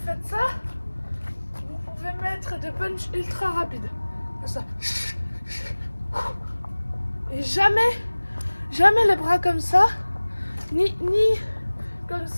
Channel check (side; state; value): both; inverted; correlation -1.00